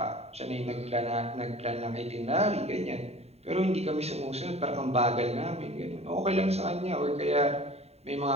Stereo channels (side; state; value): left; late; 0.30 ms